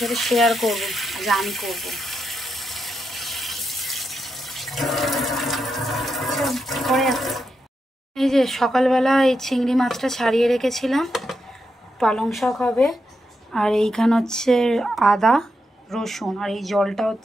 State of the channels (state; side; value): normal; both; correlation 0.85